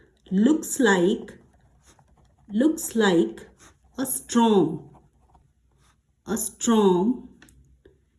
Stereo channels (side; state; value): both; identical; correlation 1.00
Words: looks like a storm